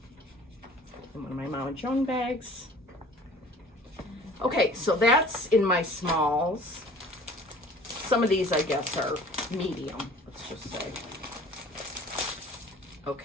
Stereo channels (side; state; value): both; normal; correlation 0.48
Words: in one of my Mama Joan bags. Okay, so that's in my smalls. Some of these, I guess, are medium, let's just say.